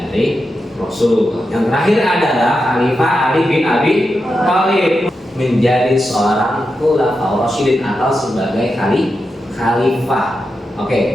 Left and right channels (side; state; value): both; normal; correlation 0.88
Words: Rasulullah. Yang terakhir adalah Khalifah Ali bin Abi Thalib, menjadi seorang Khulafaur Rasyidin atau sebagai khalifah. Oke,